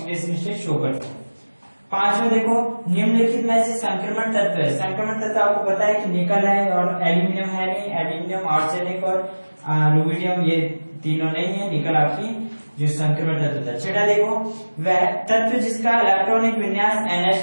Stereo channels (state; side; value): inverted; both; correlation -1.00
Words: स्टेट शो करते हैं। पांचवें देखो, निम्नलिखित में से संक्रमण तत्व है। संक्रमण तत्व आपको पता है कि निकल है और एल्यूमिनियम है नहीं, एल्यूमिनियम, आर्सेनिक और रुबिडियम ये तीनों नहीं है, निकल आपकी जो संक्रमण तत्व होता है। छठा देखो, वह तत्व जिसका इलेक्ट्रॉनिक विन्यास